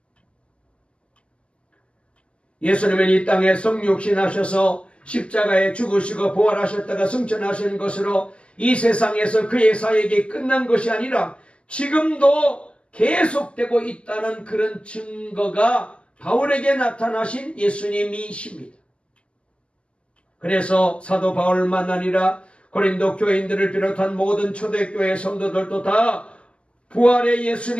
예수님은 이 땅에 성육신하셔서 십자가에 죽으시고 부활하셨다가 승천하신 것으로 이 세상에서 그의 사역이 끝난 것이 아니라 지금도 계속되고 있다는 그런 증거가 바울에게 나타나신 예수님이십니다. 그래서 사도 바울만 아니라 고린도 교인들을 비롯한 모든 초대교회 성도들도 다 부활의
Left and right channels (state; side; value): late; right; 0.059 ms